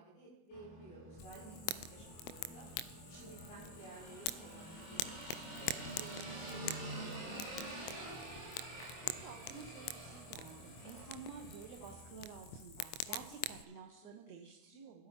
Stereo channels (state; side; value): late; right; 24 ms